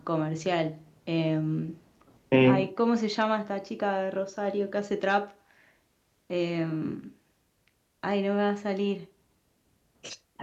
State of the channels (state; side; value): identical; both; correlation 1.00